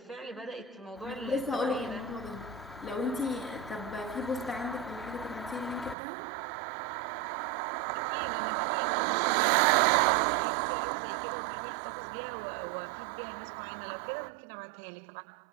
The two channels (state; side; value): drops out; left; at 6.0 s